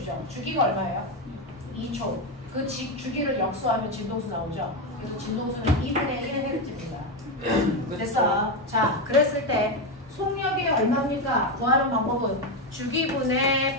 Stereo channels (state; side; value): normal; both; correlation 0.10